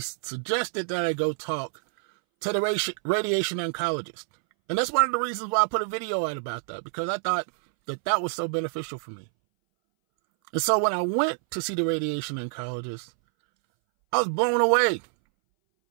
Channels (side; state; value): left; silent; 60 dB below the other